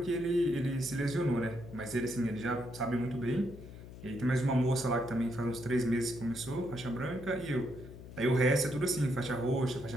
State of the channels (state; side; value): noise; left; hum, 14 dB below the sound